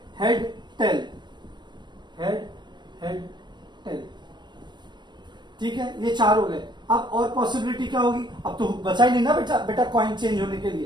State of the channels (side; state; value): left; late; 0.22 ms